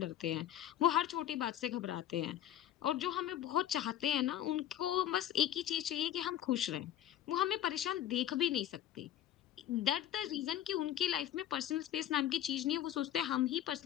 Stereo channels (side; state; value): right; quieter; 11.6 dB